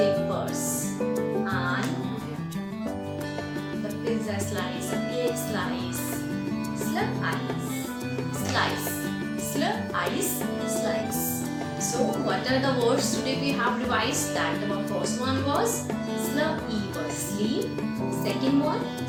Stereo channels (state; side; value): identical; both; correlation 1.00